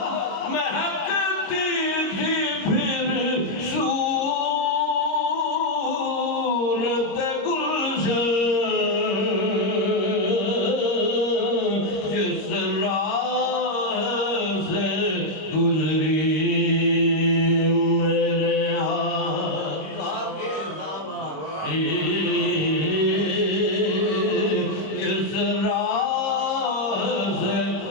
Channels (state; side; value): late; right; 26 ms